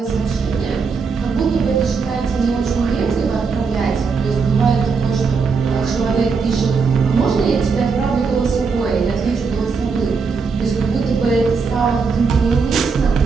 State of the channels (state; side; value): quieter; left; 5.1 dB